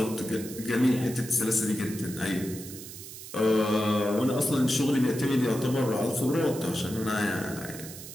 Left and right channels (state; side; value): noise; right; hiss, 13 dB below the sound